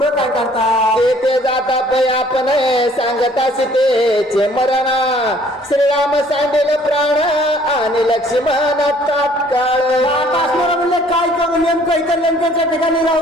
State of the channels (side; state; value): both; normal; correlation 0.58